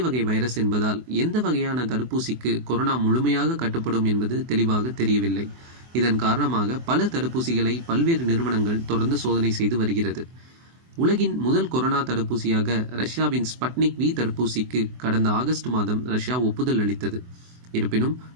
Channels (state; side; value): late; left; 24 ms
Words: வகை வைரஸ் என்பதால் எந்த வகையான தடுப்பூசிக்கு கொரோனா முழுமையாக கட்டுப்படும் என்பது தெளிவாக தெரியவில்லை. இதன் காரணமாக பல தடுப்பூசிகளை பல்வேறு நிறுவனங்கள் தொடர்ந்து சோதனை செய்து வருகிறது. உலகின் முதல் கொரோனா தடுப்பூசியாக ரஷ்யாவின் ஸ்பட்னிக் வி தடுப்பூசிக்கு கடந்த ஆகஸ்ட் மாதம் ரஷ்யா ஒப்புதல் அளித்தது. இருப்பினும்